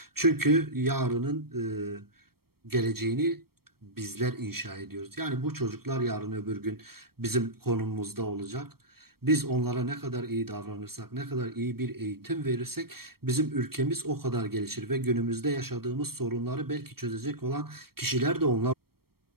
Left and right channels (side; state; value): left; late; 0.94 ms